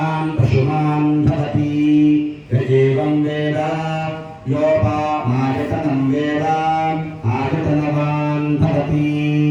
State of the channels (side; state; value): both; identical; correlation 1.00